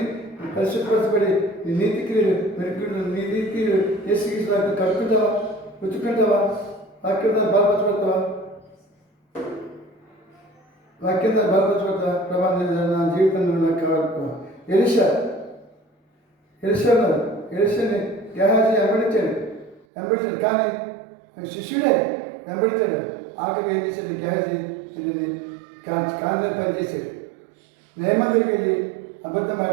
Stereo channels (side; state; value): left; drops out; at 19.8 s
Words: పరిశుభ్రపరచబడి నీ నీతి క్రియలు మెరుగుడు, నీ నీతి క్రియలు ఏసుకి కడుక్కుంటావా, పుచ్చుకుంటావా, వాక్యం ద్వారా బలపరచబడతావా, వాక్యం ద్వారా బలపరచబడతావా? ప్రభావం నా జీవితంలో నాకు కావాలి. ఎలిషాని గెహాజీ వెంబడించాడు కానీ శిష్యుడే వెంబడించాడు. ఆఖరికి ఏం చేశాడు గెహాజీ? ఇది కాంతి పనిచేశాడు. నేమం దగ్గరికి వెళ్ళి అబద్ధం